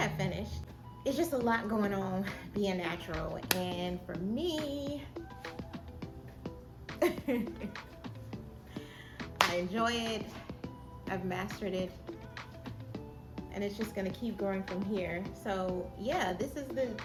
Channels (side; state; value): both; identical; correlation 1.00